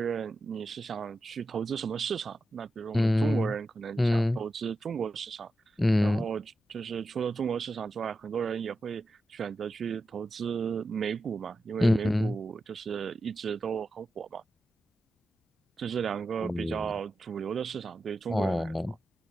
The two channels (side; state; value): both; normal; correlation 0.90